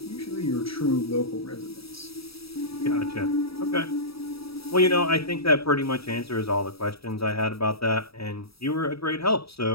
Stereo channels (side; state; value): right; late; 0.77 ms